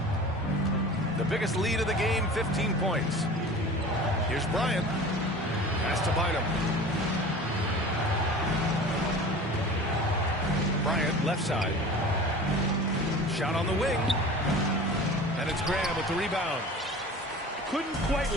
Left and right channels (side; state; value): both; normal; correlation 0.39